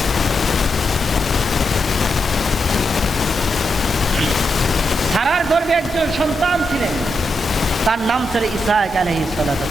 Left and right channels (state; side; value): normal; both; correlation 0.84